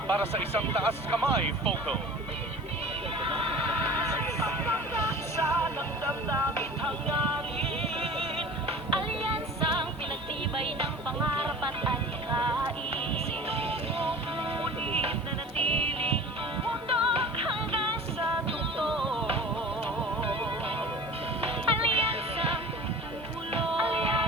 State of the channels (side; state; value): both; normal; correlation 0.40